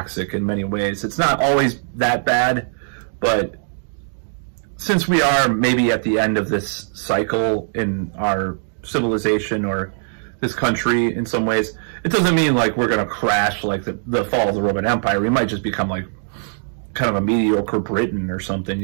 in many ways. It's not always that bad, but since we are maybe at the end of this cycle in our civilization or this country in some ways, it doesn't mean like we're going to crash like the fall of the Roman Empire. We might just become like kind of a mediocre Britain or something,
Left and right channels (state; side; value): silent; left; digital silence